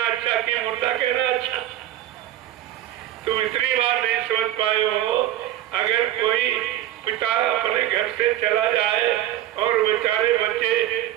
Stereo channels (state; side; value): quieter; left; 13.0 dB